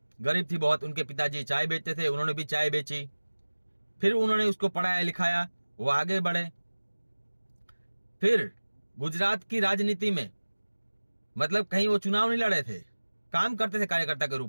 गरीब थी बहुत। उनके पिताजी चाय बेचते थे, उन्होंने भी चाय बेची। फिर उन्होंने उसको पढ़ाया लिखाया, वो आगे बढ़े। फिर गुजरात की राजनीति में, मतलब कहीं वो चुनाव नहीं लड़े थे, काम करते थे कार्यकर्ता के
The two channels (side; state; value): both; inverted; correlation -1.00